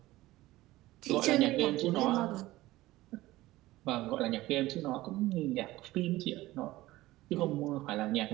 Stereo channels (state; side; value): quieter; left; 17.6 dB